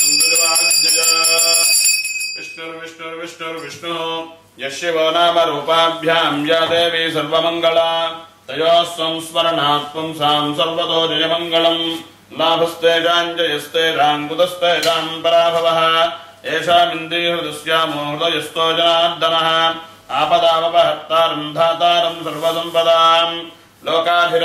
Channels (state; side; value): identical; both; correlation 1.00